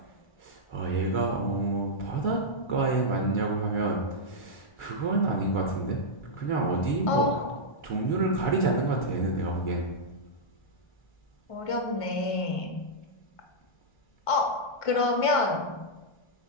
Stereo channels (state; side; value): late; right; 1.5 ms